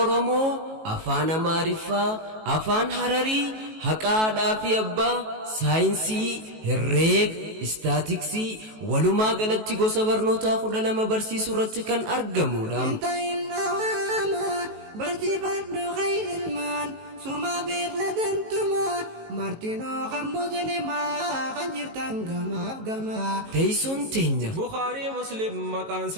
afaan amaariffaa afaan hararii haqaadhaa fi abbaa saayinsii herreega istaatiksii walumaa galatti gosa barnootaa 12 barsiisuu irratti kan argamudha. Barsiifadhu khayrilmaan suma beekladantuma martinoo kan muslimaa kan jirtan gamaaf gamaa teessoon teenya بخاري مسلم مكان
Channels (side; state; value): left; late; 18 ms